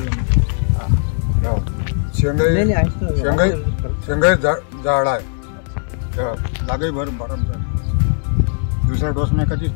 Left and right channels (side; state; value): right; silent; 64 dB below the other